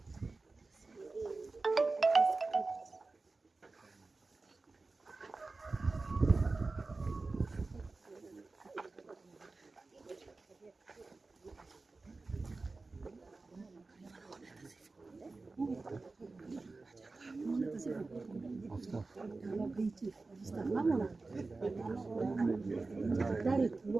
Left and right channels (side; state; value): left; quieter; 3.6 dB